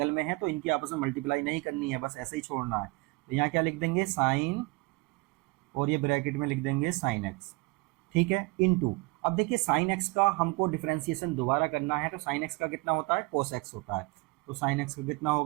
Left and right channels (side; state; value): left; quieter; 26.0 dB